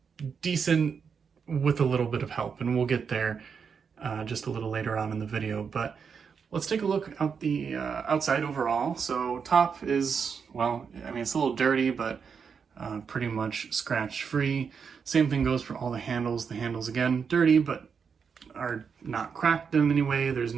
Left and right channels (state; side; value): quieter; left; 6.3 dB